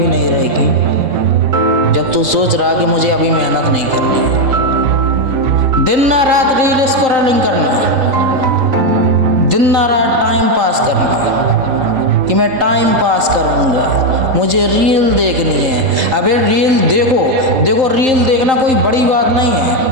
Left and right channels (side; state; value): left; late; 3.8 ms